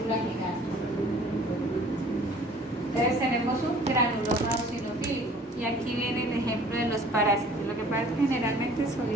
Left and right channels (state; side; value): normal; both; correlation 0.51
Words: gigante. Entonces tenemos un granuloma eosinofílico, y aquí viene el ejemplo de los parásitos. Lo que pasa es que generalmente